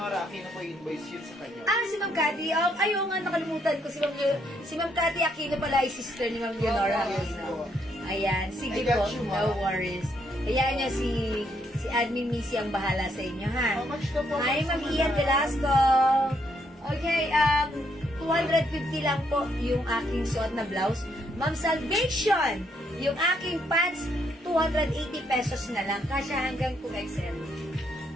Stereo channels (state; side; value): normal; both; correlation 0.73